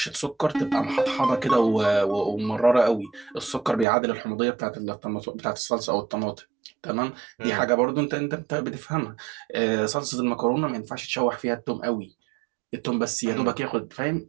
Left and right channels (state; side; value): drops out; left; at 3.9 s